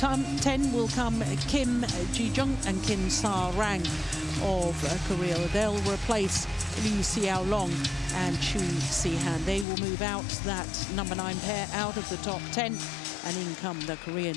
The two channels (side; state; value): right; drops out; at 9.7 s